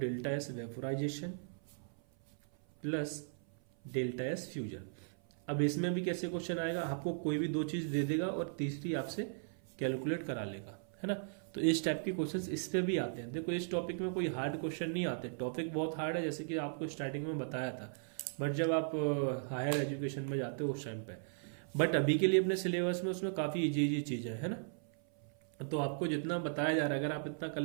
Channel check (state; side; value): silent; left; 53 dB below the other